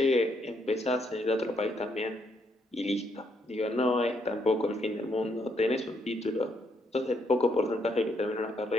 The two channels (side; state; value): both; normal; correlation 0.75